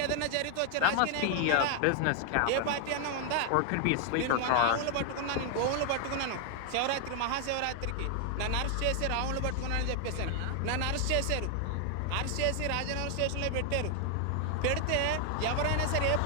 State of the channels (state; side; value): different; both; correlation 0.00